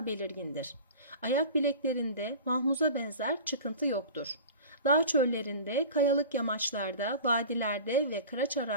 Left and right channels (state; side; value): inverted; both; correlation -0.36